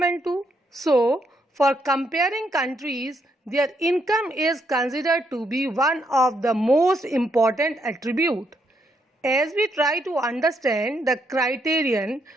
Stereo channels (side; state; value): both; normal; correlation 0.76